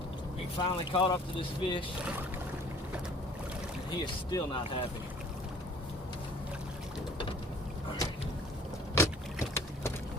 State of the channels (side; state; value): both; normal; correlation 0.51